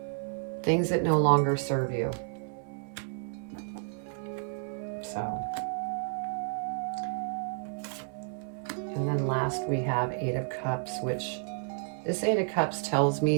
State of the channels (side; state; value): left; silent; 57 dB below the other